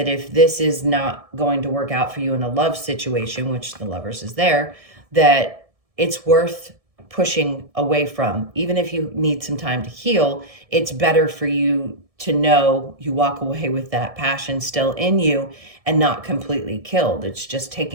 if this is not going to work out for you in a love situation, which the Lovers is there, that it's worth pushing away from. Even if you need some time to heal, it's better for you to know you walk away with that passion still in you and not completely killed. It's just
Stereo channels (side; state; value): left; late; 1.7 ms